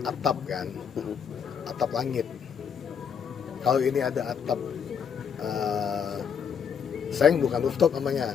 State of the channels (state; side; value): quieter; right; 7.2 dB